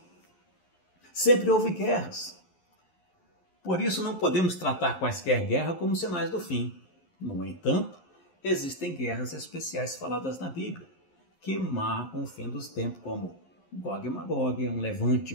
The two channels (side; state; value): right; late; 11 ms